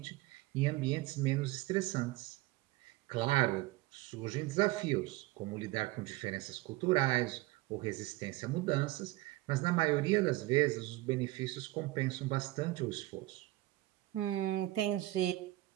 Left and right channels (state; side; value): quieter; left; 18.4 dB